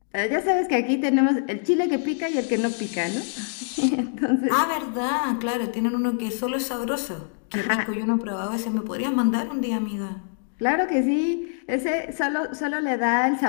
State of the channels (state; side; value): silent; right; digital silence